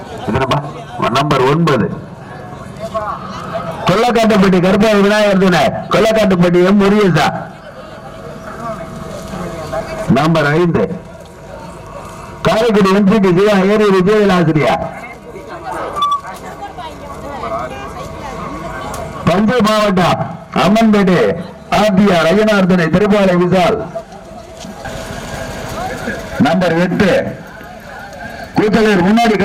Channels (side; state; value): both; identical; correlation 1.00